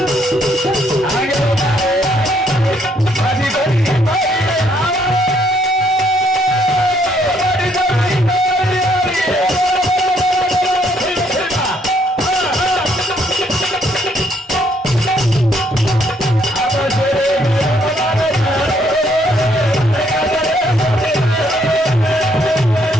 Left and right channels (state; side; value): normal; both; correlation 0.69